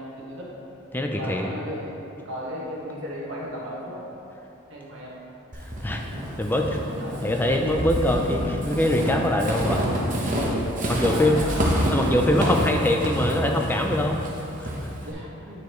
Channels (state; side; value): normal; both; correlation 0.63